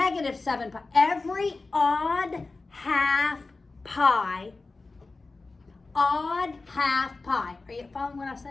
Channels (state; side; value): quieter; right; 3.6 dB